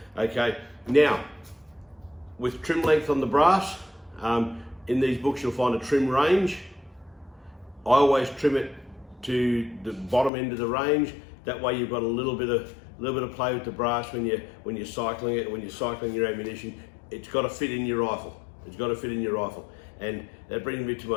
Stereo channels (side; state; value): right; drops out; at 10.3 s